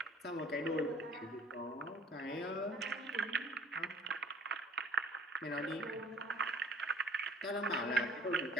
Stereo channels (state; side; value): normal; both; correlation 0.51